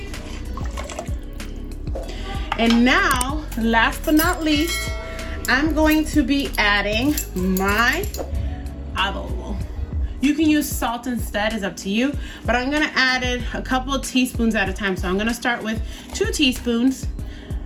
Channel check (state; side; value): identical; both; correlation 1.00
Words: And now, last but not least, I'm going to be adding my adobo. You can use salt instead, it's up to you, but I'm gonna add it a couple of teaspoons at a time. So I'm gonna start with 2 teaspoons,